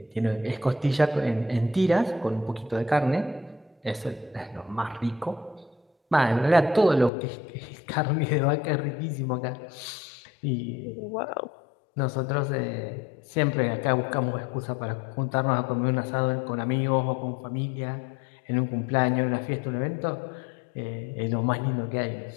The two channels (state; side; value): drops out; right; at 7.1 s